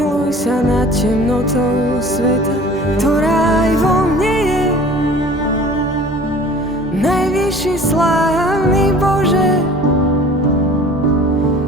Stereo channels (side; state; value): both; normal; correlation 0.45